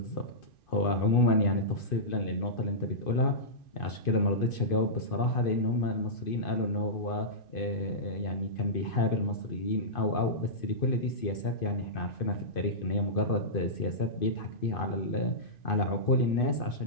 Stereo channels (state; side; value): late; right; 2.5 ms